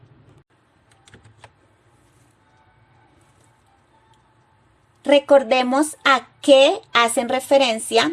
Recordemos a qué hacen referencia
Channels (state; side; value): identical; both; correlation 1.00